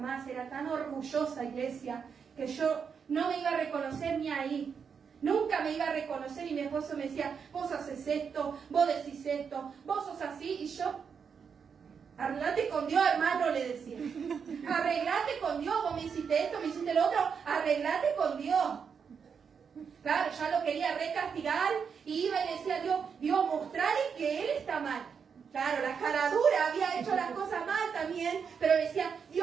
era tan orgullosa, iglesia, que yo no me iba a reconocer ni ahí. Nunca me iba a reconocer y mi esposo me decía: vos haces esto, vos decís esto, vos sos así. Y yo: arreglate con Dios, hermano, le decía. Arreglate con Dios, vos me hiciste esto, me hiciste lo otro, arreglate con Dios. Claro, ya lo quería recastigar y iba y le decía a Dios, mostrale que él está mal. Claro, la cara dura, había hecho las cosas mal también, pero decía:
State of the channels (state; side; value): quieter; left; 6.5 dB